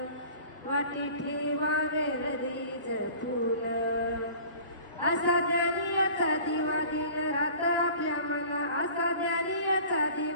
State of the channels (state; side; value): inverted; both; correlation -0.45